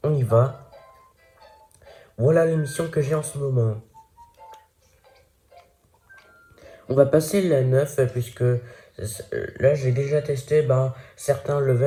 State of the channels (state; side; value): identical; both; correlation 1.00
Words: On y va. Voilà l'émission que j'ai en ce moment. On va passer la 9 puisque là j'ai déjà testé certains